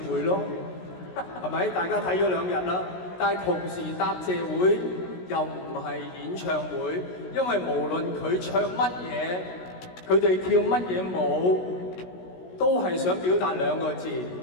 咯，係咪？大家睇咗2日啦，但係同時答謝會又唔係演唱會，因為無論佢唱乜嘢，佢哋跳乜嘢舞，都係想表達2個字：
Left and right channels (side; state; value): right; late; 16 ms